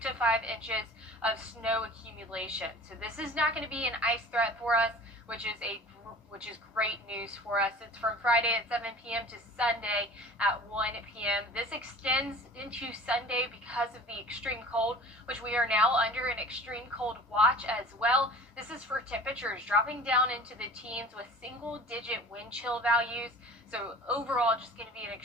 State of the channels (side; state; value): both; normal; correlation 0.42